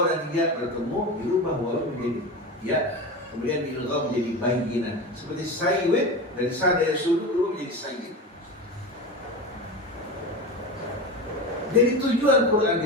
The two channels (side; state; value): both; normal; correlation 0.25